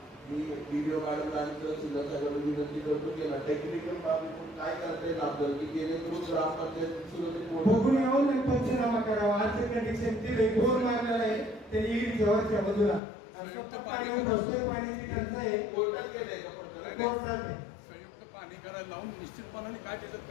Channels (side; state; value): right; drops out; at 13.0 s